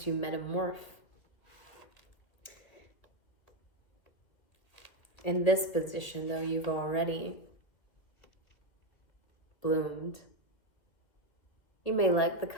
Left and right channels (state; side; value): late; right; 2.1 ms